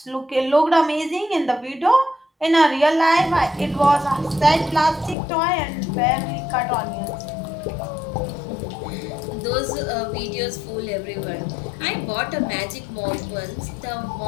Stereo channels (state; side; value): drops out; right; at 5.2 s